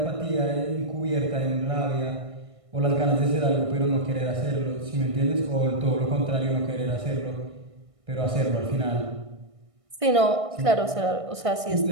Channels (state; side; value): late; left; 1.6 ms